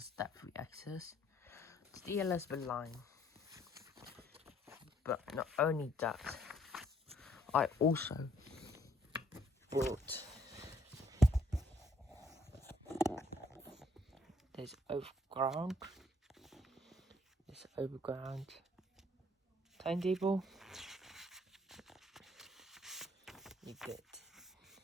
step-free access. It's the Elizabeth Line. But not only that, I also bought this overground timetable. You get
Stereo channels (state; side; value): normal; both; correlation 0.65